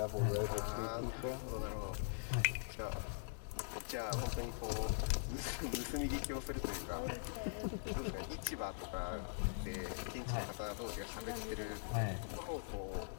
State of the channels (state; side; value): silent; right; digital silence